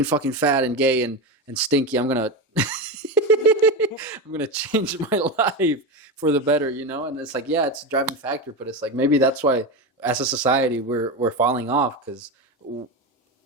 fucking fat and gay and stinky. I'm gonna I'm gonna change my life for the better, you know. And it's like, yeah, it's a driving factor, but it's like maybe that's why as a society we're falling off because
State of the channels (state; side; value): normal; both; correlation 0.18